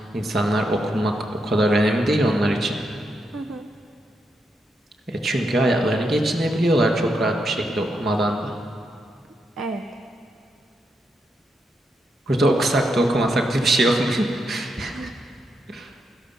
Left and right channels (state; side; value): normal; both; correlation 0.82